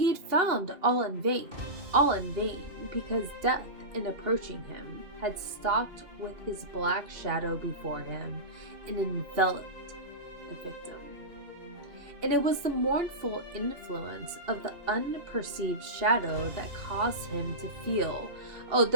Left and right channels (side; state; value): left; late; 2.8 ms